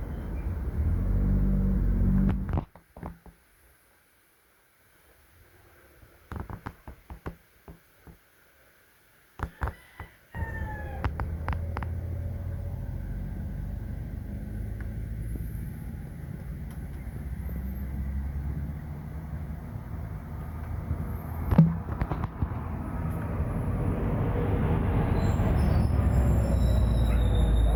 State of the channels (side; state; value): both; identical; correlation 1.00